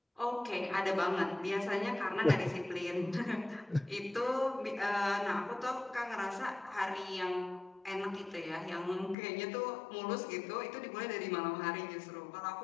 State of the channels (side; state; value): right; drops out; at 9.2 s